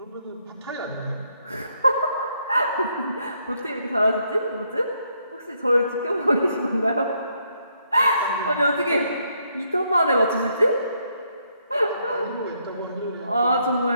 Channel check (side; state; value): both; inverted; correlation -0.74